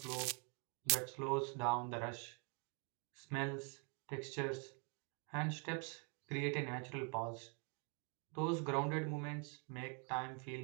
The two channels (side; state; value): left; quieter; 38.2 dB